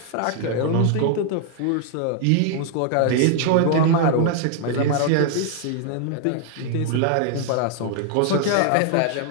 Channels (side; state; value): both; different; correlation 0.00